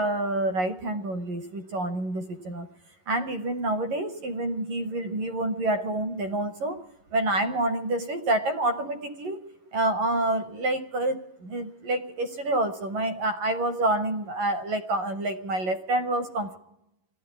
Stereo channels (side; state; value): left; late; 11 ms